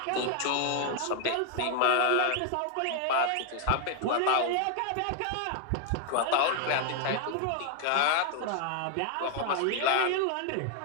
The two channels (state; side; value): different; both; correlation 0.00